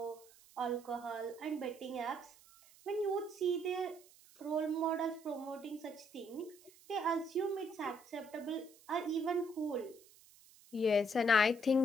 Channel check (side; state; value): right; noise; hiss, 25 dB below the sound